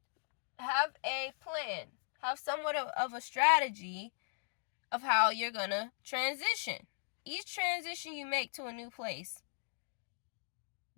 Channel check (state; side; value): silent; right; digital silence